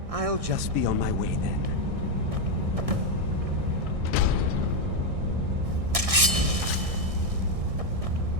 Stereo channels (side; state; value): left; late; 1.6 ms